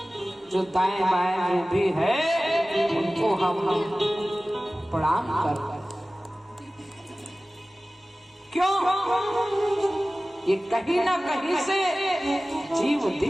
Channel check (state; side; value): normal; both; correlation 0.97